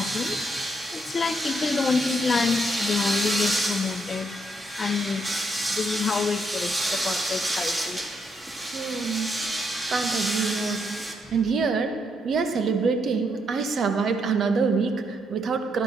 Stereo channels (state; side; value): normal; both; correlation 0.76